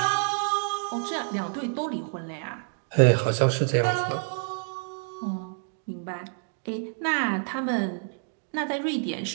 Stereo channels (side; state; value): left; silent; 59 dB below the other